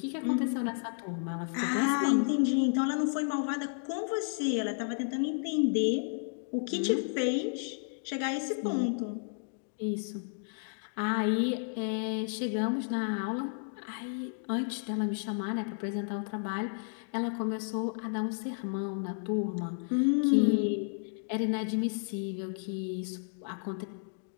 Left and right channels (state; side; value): silent; right; digital silence